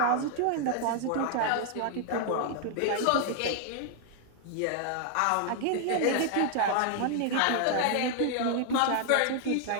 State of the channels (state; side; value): different; both; correlation 0.00